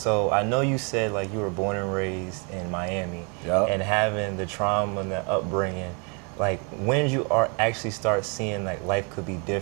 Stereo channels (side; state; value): left; quieter; 35.1 dB